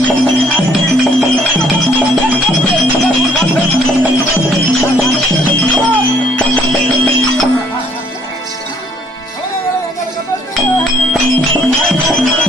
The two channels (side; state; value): both; normal; correlation 0.64